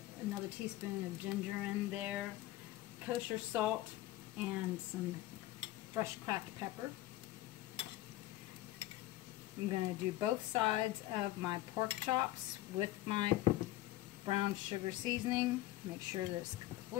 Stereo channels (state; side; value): quieter; right; 16.0 dB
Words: another teaspoon of ginger in there, kosher salt, and some fresh cracked pepper. I'm going to do both sides of my pork chops with my brown sugar seasoning. Make sure that it's